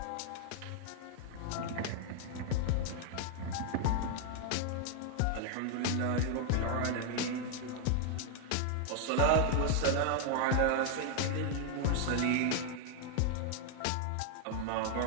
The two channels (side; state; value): both; different; correlation 0.00